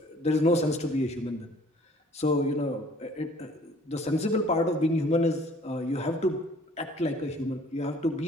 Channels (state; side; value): normal; both; correlation 0.55